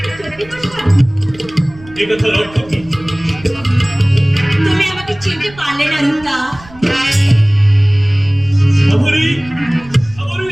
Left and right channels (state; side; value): noise; right; rumble, 21 dB below the sound